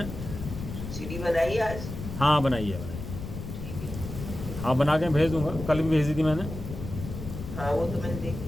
सीढ़ी बनाई आज। हाँ बनाइए बनाइए। ठीक है। हाँ बना के भेज दूंगा, कल भी भेज दी थी मैंने। हाँ वो तो मैंने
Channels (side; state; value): left; noise; rumble, 8 dB below the sound